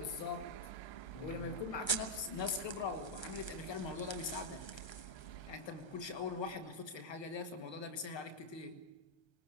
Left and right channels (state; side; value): late; right; 1.3 ms